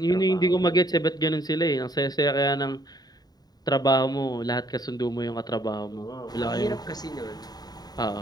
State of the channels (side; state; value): right; late; 0.19 ms